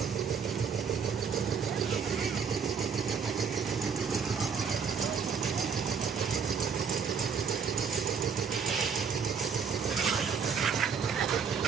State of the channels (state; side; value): quieter; left; 6.3 dB